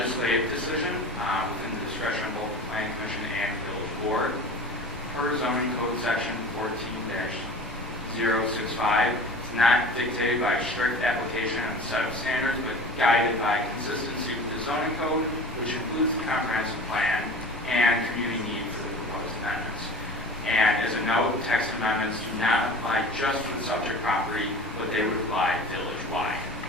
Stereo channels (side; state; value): both; normal; correlation 0.38